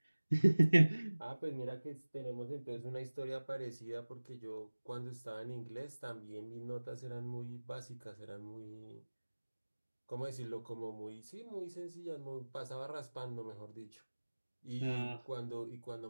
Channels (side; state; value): both; inverted; correlation -1.00